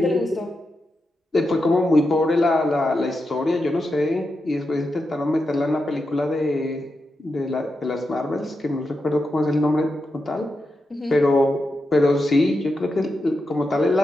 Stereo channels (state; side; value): normal; both; correlation 0.88